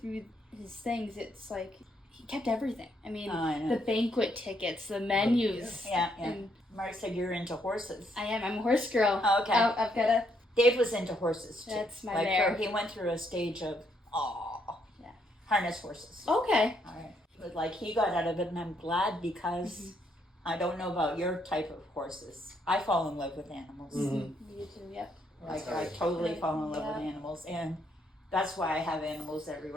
his things, it's like he kept everything. I mean, I know. the banquet tickets, the menus. Yeah. And Mark said you're into horses. I am. I'm a horse girl. Oh, okay. I've got a. Dave was into horses too. That's my like mare. he went through a stage of Yeah. harness horses. Okay. All right. But like he got out of it, and I'm glad because I don't know about your type of horses. I fall in love with animals. Mhm. You too. Yep. Like I totally fall in love with animals, and that's why I have animals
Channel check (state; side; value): normal; both; correlation 0.73